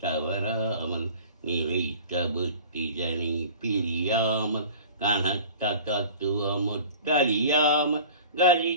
தவறாமல் நிறைத்த புத்திஜனை பிரியாமல் கனத்த தத்துவமுற்றறியாமல்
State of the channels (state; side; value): inverted; both; correlation -0.42